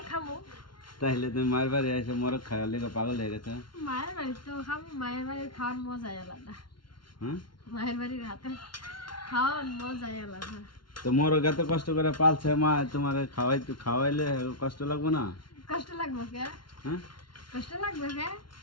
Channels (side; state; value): right; late; 0.72 ms